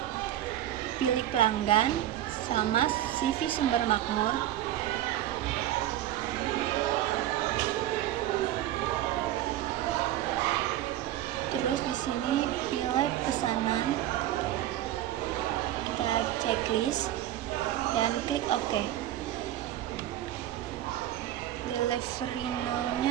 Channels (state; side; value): quieter; left; 13.0 dB